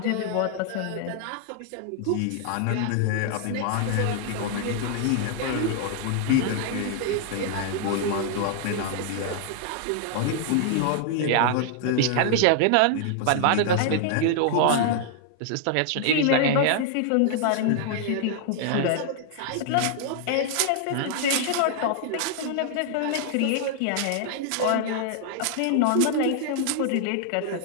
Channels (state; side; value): different; both; correlation -0.01